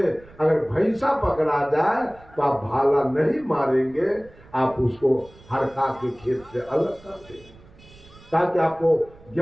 अगर भैंसा पकड़ा जाए तो आप भाला नहीं मारेंगे, आप उसको हड़का के खेत से अलग कर देंगे, ताकि आपको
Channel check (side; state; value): right; noise; rumble, 24 dB below the sound